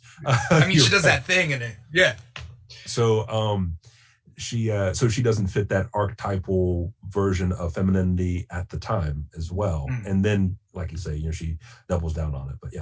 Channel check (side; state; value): both; identical; correlation 1.00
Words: I mean, she does that thing in it. Yeah. So she doesn't fit that archetypal version of femininity at the time as well. And then, like you say, she doubles down on it. But